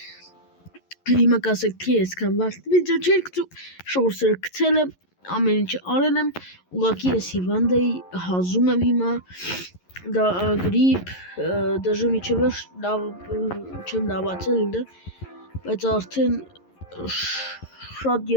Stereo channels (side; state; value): right; late; 11 ms